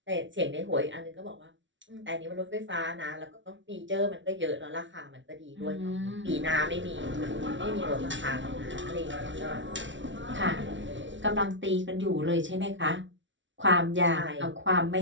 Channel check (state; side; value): late; left; 0.55 ms